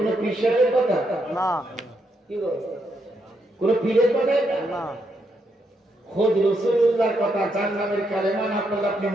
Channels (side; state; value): both; normal; correlation 0.79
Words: পীরের কথা না, কি গো? কোন পীরের কথা না, খোদ রাসূলুল্লাহর কথা। জান্নাতের কালেমা না পড়লে আপনি